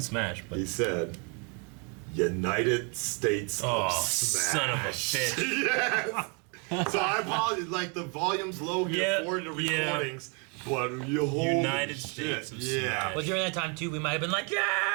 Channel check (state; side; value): quieter; left; 35.7 dB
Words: Smash, but he said, "United States of Smash." Son of a bitch. Yes. So I apologize. Like, the volume's low here for the recordings. But you hold United States of Smash. Well, during that time too, we might have been like,